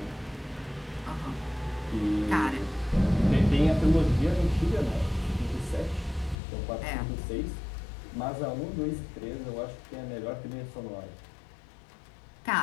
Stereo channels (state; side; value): drops out; right; at 6.4 s